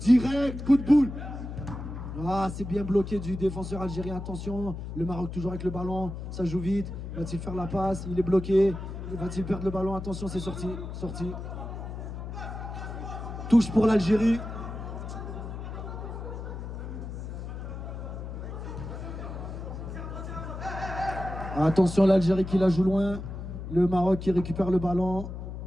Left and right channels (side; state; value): left; noise; hum, 8 dB below the sound